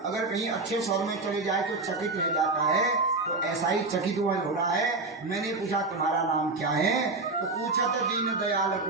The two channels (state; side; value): quieter; left; 3.4 dB